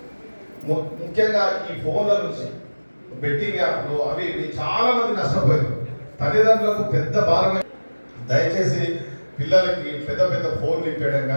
ముఖ్యంగా ఈ ఫోన్ల నుంచి బెట్టింగ్ యాప్లు అవి చాలా మంది నష్టపోయారు. తల్లిదండ్రులకు పెద్ద భారమే. దయచేసి పిల్లలకి పెద్ద పెద్ద ఫోన్లు ఇప్పేయడం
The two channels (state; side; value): inverted; both; correlation -1.00